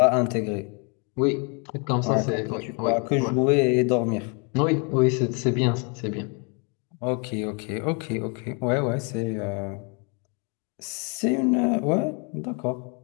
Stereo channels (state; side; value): quieter; right; 35.6 dB